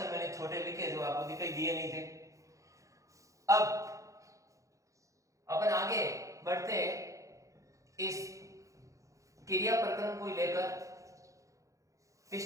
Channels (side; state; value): left; late; 0.15 ms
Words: मैंने छोटे लिखे जो आपको दिखाई दिए नहीं थे। अब अपन आगे बढ़ते हैं इस क्रिया प्रकरण को लेकर।